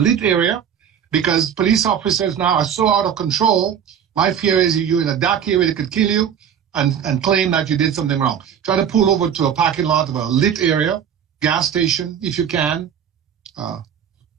area, because police officers now are so out of control. My fear is you're in a dark area, they could kill you and claim that you did something wrong. Try to pull over to a parking lot of a lit area, gas station if you can,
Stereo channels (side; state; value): left; quieter; 8.4 dB